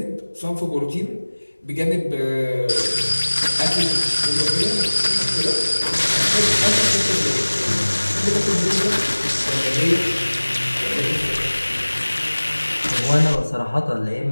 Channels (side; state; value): both; inverted; correlation -1.00